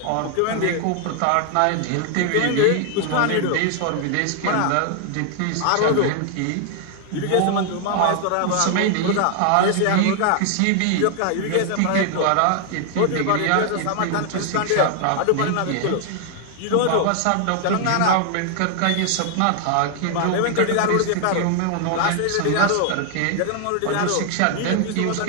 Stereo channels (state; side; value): different; both; correlation 0.00